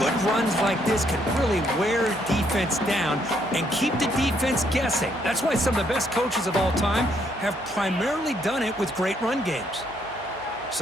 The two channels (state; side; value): noise; right; hum, 22 dB below the sound